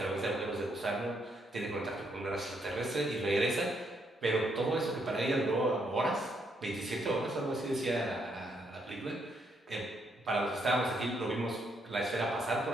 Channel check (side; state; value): both; normal; correlation 0.75